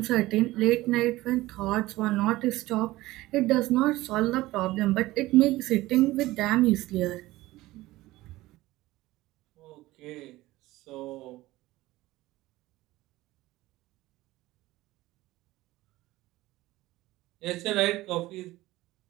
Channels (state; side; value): quieter; left; 17.8 dB